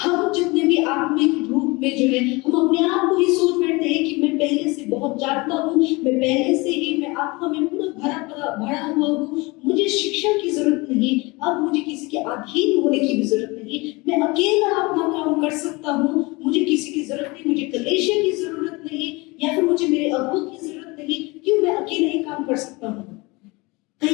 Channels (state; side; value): quieter; right; 24.8 dB